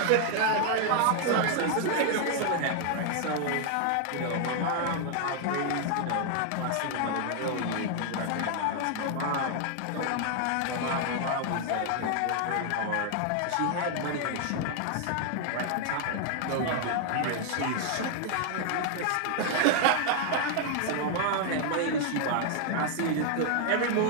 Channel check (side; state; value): both; different; correlation 0.00